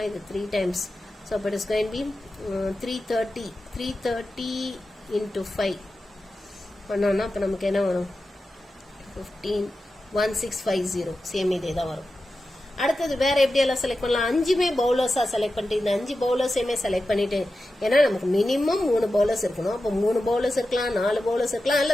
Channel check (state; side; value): normal; both; correlation 0.92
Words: இது 3 times. So it is going to be 330 into 5 பண்ணோம்னா அப்போ நமக்கு என்ன வரும்? 1650. Same இதே தான் வரும். அடுத்தது வேற எப்படி எல்லாம் செலக்ட் பண்ணலாம்? 5மே பவுலர்ஸா செலக்ட் பண்ணிட்டு இந்த 5 பவுலர்ஸையுமே செலக்ட் பண்ணிட்டு, ஏன்னா நமக்கு மினிமம் 3 பவுலர்ஸ் இருக்கணும். அப்போ 3 பவுலர்ஸ் இருக்கலாம், 4 பவுலர்ஸ் இருக்கலாம்,